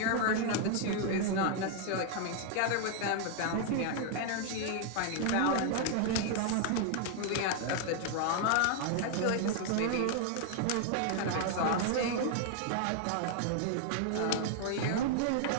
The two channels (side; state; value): both; different; correlation 0.00